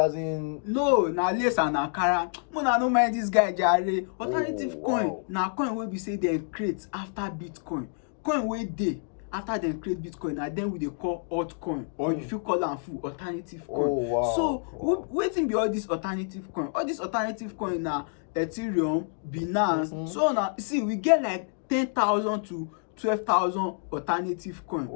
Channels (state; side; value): silent; right; 59 dB below the other